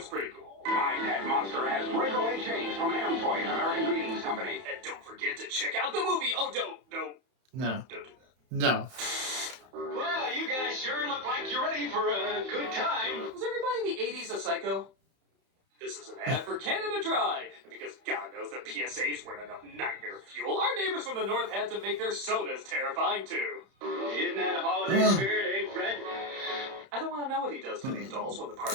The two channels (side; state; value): left; late; 31 ms